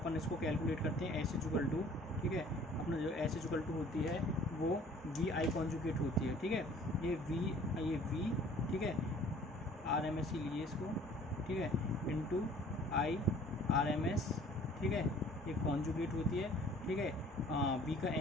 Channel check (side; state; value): both; normal; correlation 0.52